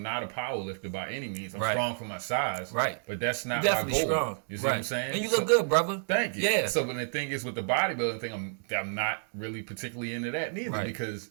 not a power lifter by any means. I'm strong for my size. Right. But that's not my goal. Strong. You see what I'm saying? And you look good, brother. Thank you. Yeah. So, but the thing is with the bodybuilding thing, I'm not really particularly into that neither because,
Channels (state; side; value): silent; left; digital silence